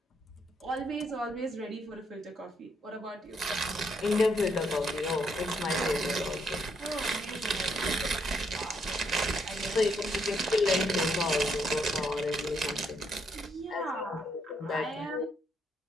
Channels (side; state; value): both; normal; correlation 0.74